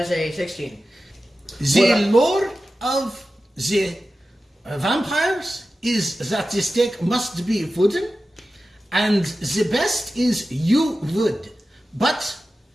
is a 16. The lore of the vampires is that the steak must be wooden, and the best is yew wood. But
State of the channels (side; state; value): both; normal; correlation 0.94